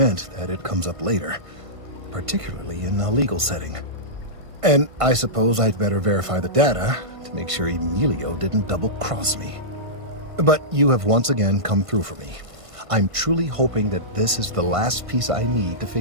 that it comes up later, particularly in a legal setting. And I suppose I'd better verify the data to make sure Emilio didn't double-cross me. But you have once again come through for me. I'm truly hoping that this is the last piece I need to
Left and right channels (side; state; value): left; late; 1.5 ms